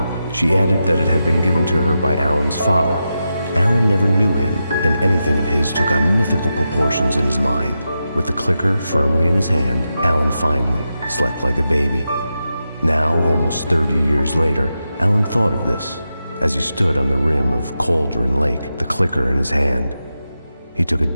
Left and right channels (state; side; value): inverted; both; correlation -0.89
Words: she added that it had been given to her by Alan's father. Alan never knew him, and anything of his took on mythical proportions in his mind. With the clicker firmly in his hand, Alan finally slept like a baby. Now, almost 30 years later, Alan thought of this as he stood on the rim of Cauldron Lake, the clicker in his hand. He took a